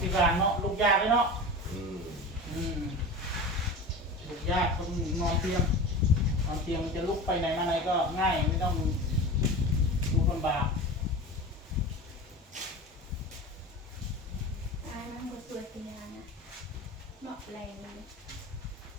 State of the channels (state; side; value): normal; both; correlation 0.31